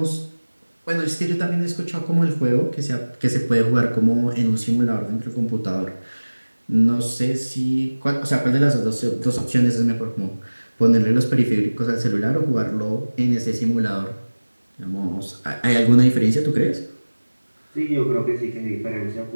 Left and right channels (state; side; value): inverted; both; correlation -1.00